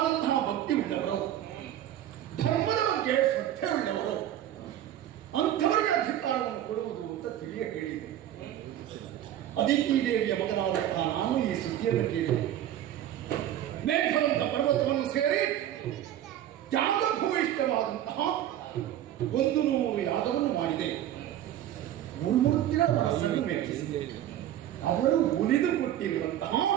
ಭಕ್ತಿ ಉಳ್ಳವರು, ಧರ್ಮದ ಬಗ್ಗೆ ಶ್ರದ್ಧೆ ಉಳ್ಳವರು, ಅಂಥವರಿಗೆ ಅಧಿಕಾರವನ್ನು ಕೊಡುವುದು ಅಂತ ತಿಳಿಯ ಕೇಳಿದೆ. ಅದಿತಿ ದೇವಿಯ ಮಗನಾದಂತಹ ನಾನು ಈ ಸುದ್ದಿಯನ್ನು ಕೇಳಿದೆ. ಮೇಘವಂತ ಪರ್ವತವನ್ನು ಸೇರಿ ತ್ಯಾಗಭೂಯಿಷ್ಠವಾದಂತಹ 100 ಯಾಗವನ್ನು ಮಾಡಿದೆ. ಗುರುಮೂರ್ತಿಗಳ ಮನಸ್ಸನ್ನು ಮೆಚ್ಚಿಸಿದೆ. ಅವರು ಉಳಿದುಕೊಟ್ಟಿರುವಂತಹ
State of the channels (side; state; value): left; quieter; 11.9 dB